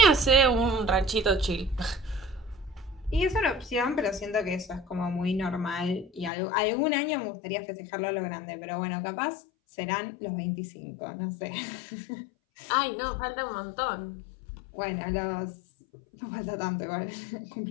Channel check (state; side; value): drops out; right; at 6.3 s